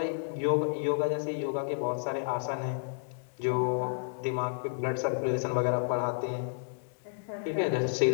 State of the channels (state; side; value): silent; right; digital silence